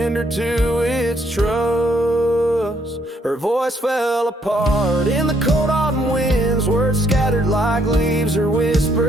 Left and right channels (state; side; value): normal; both; correlation 0.70